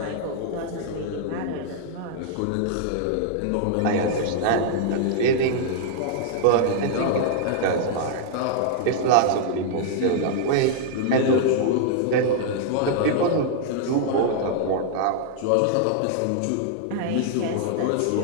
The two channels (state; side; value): different; both; correlation -0.01